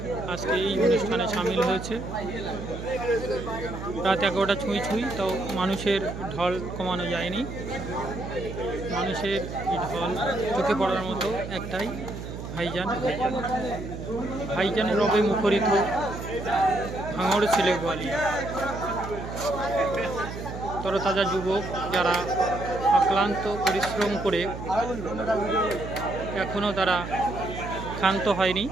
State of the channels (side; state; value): right; noise; hum, 8 dB below the sound